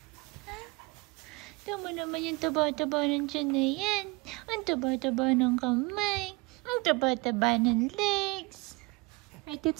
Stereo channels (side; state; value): left; quieter; 26.2 dB